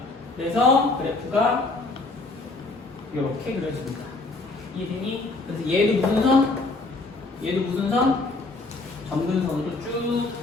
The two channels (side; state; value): right; quieter; 3.3 dB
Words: 그래서 그래프가 이렇게 그려집니다. 이해되니? 그래서 얘도 무슨 선? 얘도 무슨 선? 점근선으로 쭉